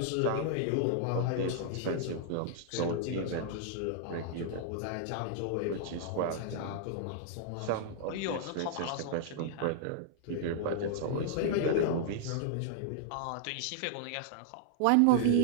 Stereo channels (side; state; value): both; different; correlation -0.01